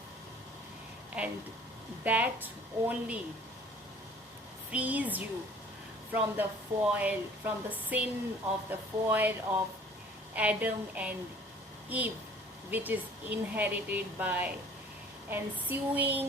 and that only frees you from the sin of the fall of Adam and Eve, which is inherited by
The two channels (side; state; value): both; normal; correlation 0.51